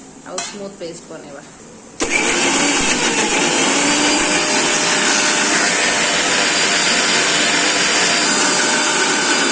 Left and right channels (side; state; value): both; identical; correlation 1.00